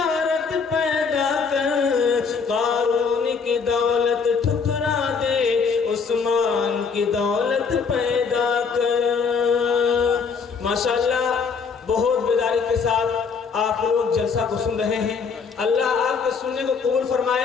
پیدا کر قارون کی دولت ٹھکرا دے عثمان کی دولت پیدا کر۔ ماشاءاللہ بہت بیداری کے ساتھ آپ لوگ جلسہ کو سن رہے ہیں، اللہ آپ کے سننے کو قبول فرمائے،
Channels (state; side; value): quieter; right; 5.5 dB